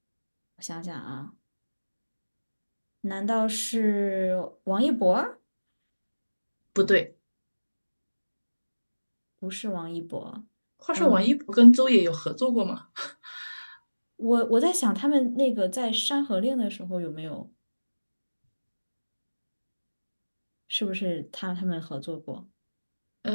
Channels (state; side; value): inverted; both; correlation -1.00